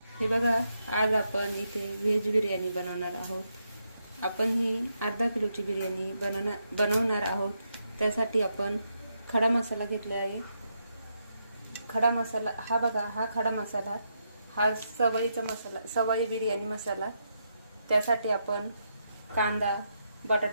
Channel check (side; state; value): both; inverted; correlation -0.81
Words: हे बघा, आज आपण इथे व्हेज बिर्याणी बनवणार आहोत. आपण ही अर्धा किलोची बिर्याणी बनवणार आहोत. त्यासाठी आपण खडा मसाला घेतला आहे. खडा मसाला हा बघा, हा खडा मसाला, हा सवयीचा मसाला, सवयी बिर्याणी मसाला. त्यासाठी आपण कांदा,